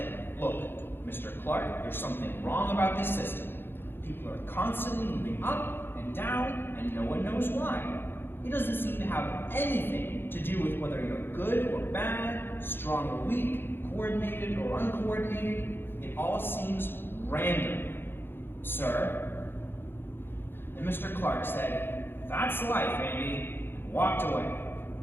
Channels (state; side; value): late; right; 0.10 ms